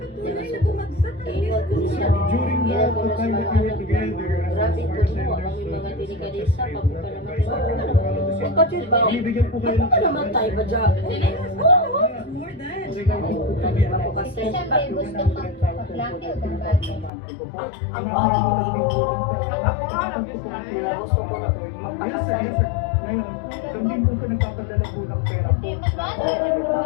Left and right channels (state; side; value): drops out; right; at 17.1 s